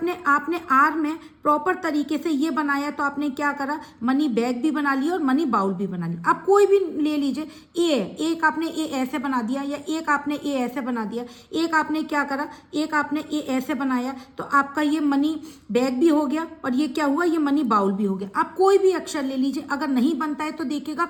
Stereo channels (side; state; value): both; identical; correlation 1.00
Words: आर में प्रॉपर तरीके से ये बनाया, तो आपने क्या करा, मनी बैग भी बना लिया और मनी बाउल भी बना लिया। आप कोई भी ले लीजिए, एक आपने ए ऐसे बना दिया, या एक आपने ए ऐसे बना दिया, एक आपने क्या करा, एक आपने ए ऐसे बनाया, तो आपका ये मनी बैग भी हो गया और ये क्या हुआ, ये मनी बाउल भी हो गया। आप कोई भी अक्षर ले लीजिए, अगर नहीं बनता है तो देखिएगा